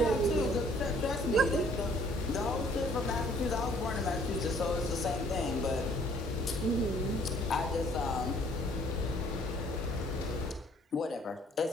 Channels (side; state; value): both; normal; correlation 0.60